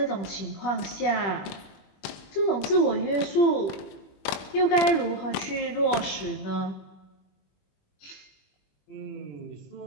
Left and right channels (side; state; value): right; late; 21 ms